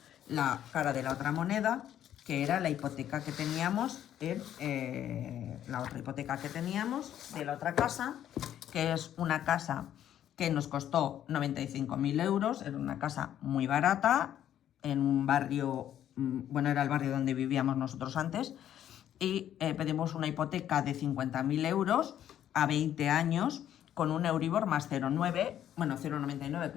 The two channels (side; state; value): right; quieter; 10.9 dB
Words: la cara de la otra moneda, que era la hipoteca que teníamos la otra hipoteca que teníamos de la otra casa, que es una casa que nos costó 95.000 euros, era una casa muy barata, en un barrio, bueno, era el barrio donde vivíamos nosotros antes, y pedimos una hipoteca de 50.000 euros a 20 años, con un Euribor más 0,9, bueno, 0,99,